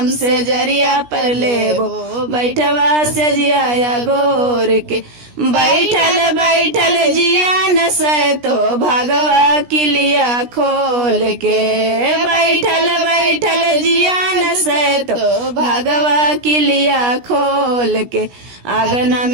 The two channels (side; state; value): left; late; 17 ms